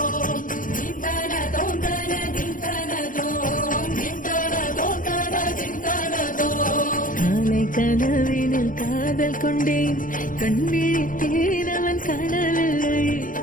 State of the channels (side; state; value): right; late; 0.39 ms